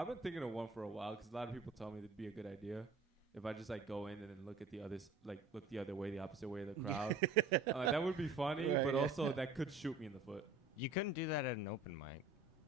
been thinking of one for a while because a lot of people tell me it'd be a good idea if I just like go in and then look at the others, like look the other way, the opposite way of the crowd. That would be funny, right, but also that could shoot me in the foot. You couldn't do that at an open mic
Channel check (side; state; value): left; quieter; 3.8 dB